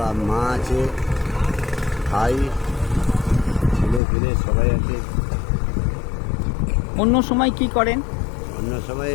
মা আছে, ভাই, ছেলে ফেলে সবাই আছে। অন্য সময় কি করেন? অন্য সময়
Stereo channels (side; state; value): right; drops out; at 4.0 s